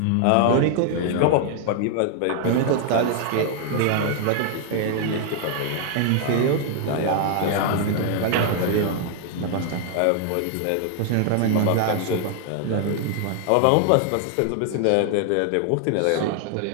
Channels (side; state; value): both; different; correlation 0.00